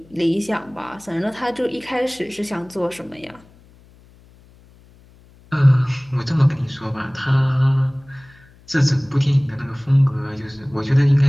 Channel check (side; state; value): left; noise; hum, 27 dB below the sound